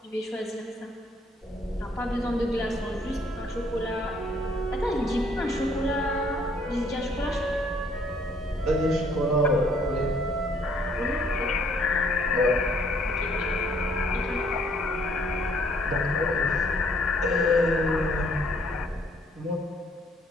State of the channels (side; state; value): both; normal; correlation 0.64